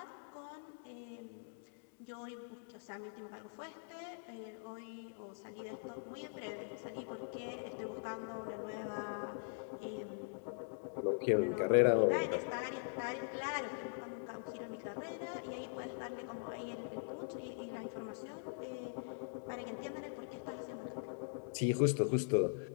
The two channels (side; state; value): right; silent; digital silence